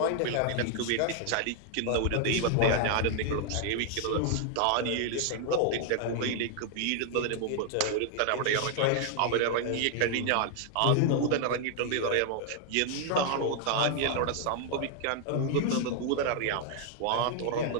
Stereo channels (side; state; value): both; different; correlation 0.00